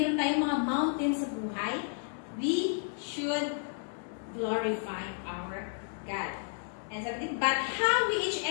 tayong mga mountains sa buhay, we should glorify our God. And sabi, but how each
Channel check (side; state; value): right; silent; 56 dB below the other